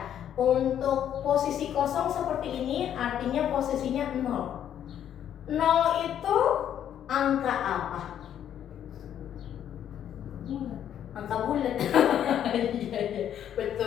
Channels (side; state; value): right; quieter; 10.0 dB